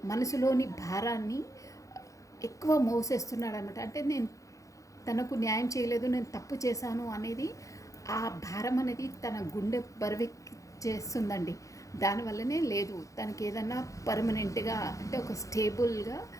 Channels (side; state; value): right; late; 0.16 ms